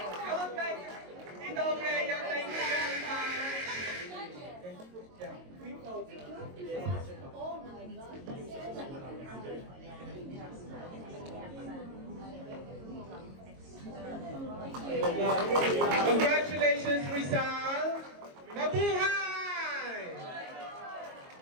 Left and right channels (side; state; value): left; late; 22 ms